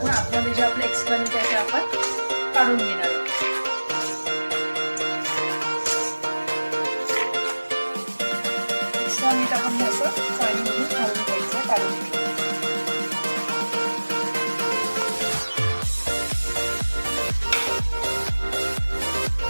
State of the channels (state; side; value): inverted; both; correlation -1.00